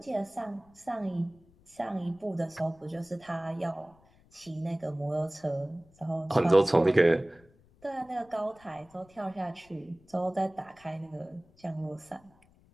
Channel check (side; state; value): left; noise; rumble, 29 dB below the sound